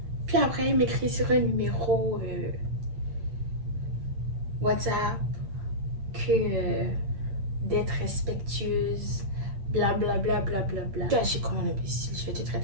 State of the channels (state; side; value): late; left; 8.7 ms